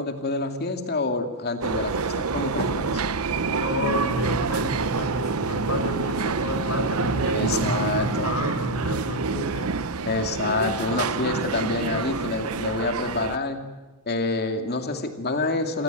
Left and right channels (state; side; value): normal; both; correlation 0.00